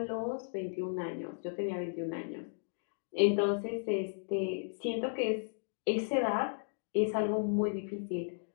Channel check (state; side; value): silent; right; digital silence